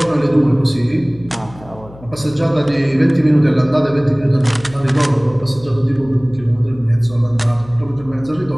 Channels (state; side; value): noise; left; hum, 20 dB below the sound